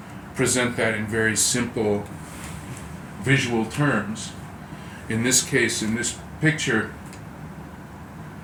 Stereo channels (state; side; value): identical; both; correlation 1.00